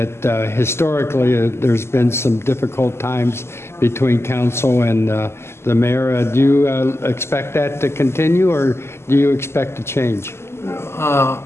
historically there's been some difficult times between council and the mayor. Do you expect that to continue, or do you expect a change?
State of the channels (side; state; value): right; late; 0.12 ms